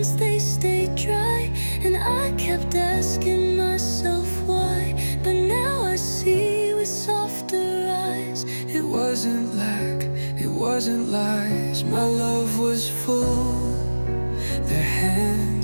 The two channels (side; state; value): both; inverted; correlation -1.00